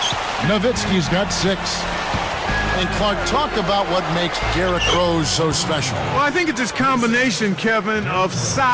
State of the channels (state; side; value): identical; both; correlation 1.00